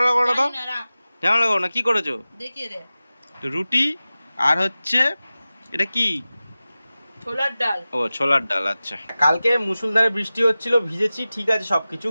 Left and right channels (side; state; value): both; inverted; correlation -0.96